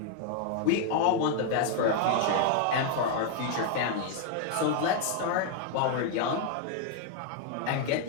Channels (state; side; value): different; both; correlation 0.00